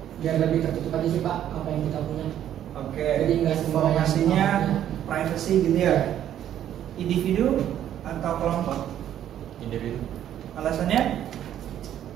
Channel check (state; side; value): quieter; left; 10.9 dB